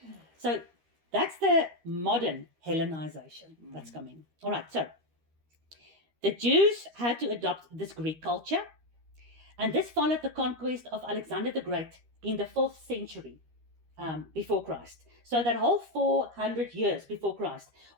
So that's the modern Hellenization that's coming. All right, so the Jews had to adopt this Greek culture, and this followed the conquest of Alexander the Great in the 4th century before Christ. So that whole 400 years before Christ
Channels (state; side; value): late; left; 13 ms